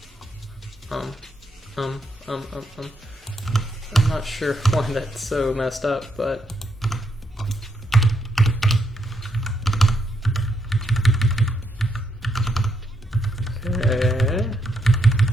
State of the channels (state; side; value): normal; both; correlation 0.78